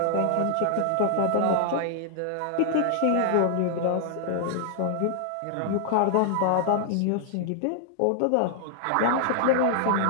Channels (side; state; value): both; different; correlation -0.01